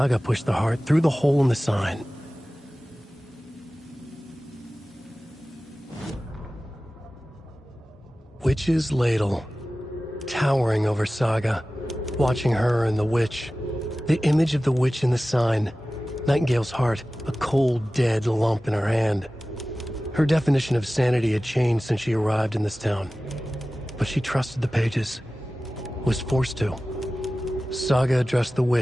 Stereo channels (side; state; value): both; normal; correlation 0.96